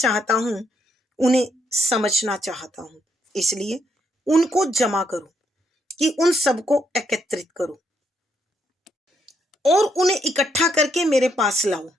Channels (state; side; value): normal; both; correlation 0.75